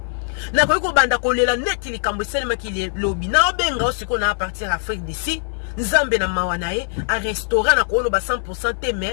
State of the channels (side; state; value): right; silent; digital silence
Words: na ko banda kolela neti likambo salema kilobi na obenga osiko na partir Afrique d'ici nzambe na mawana ye a restaurant na ko ba 100% te